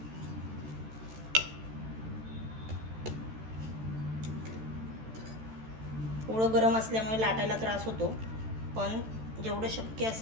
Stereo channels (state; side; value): late; left; 13 ms